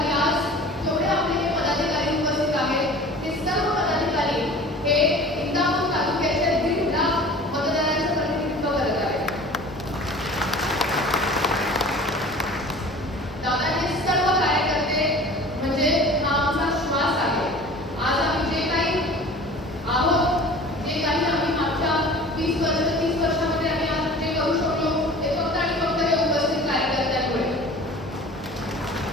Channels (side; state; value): both; normal; correlation 0.42